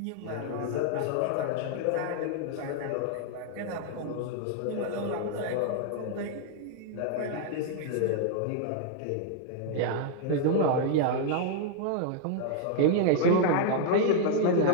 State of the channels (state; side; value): different; both; correlation 0.00